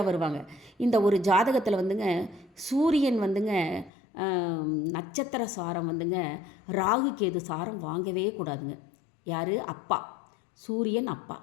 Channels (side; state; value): right; drops out; at 3.9 s